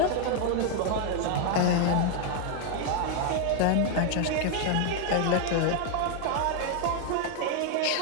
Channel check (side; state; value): both; different; correlation 0.00